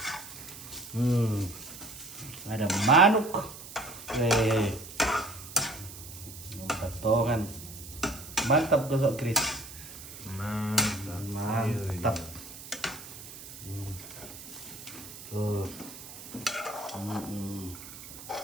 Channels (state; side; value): noise; right; hiss, 14 dB below the sound